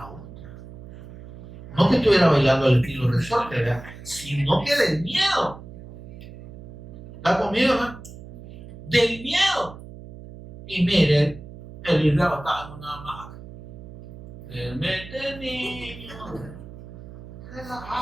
otra, no que estuviera bailando al estilo resorte, ¿verdad? Sino que del miedo. ¿Está conmigo, hermano? Del miedo. Y mire, el Israel estaba en una hamaca. Mete niño,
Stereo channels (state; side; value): noise; right; hum, 15 dB below the sound